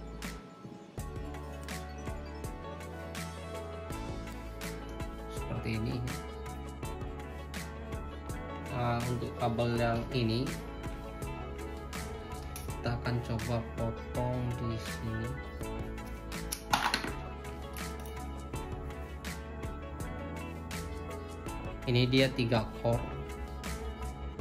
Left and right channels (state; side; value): identical; both; correlation 1.00